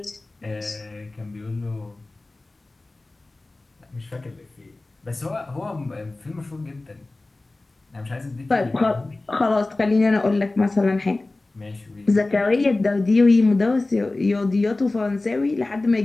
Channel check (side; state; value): right; quieter; 3.0 dB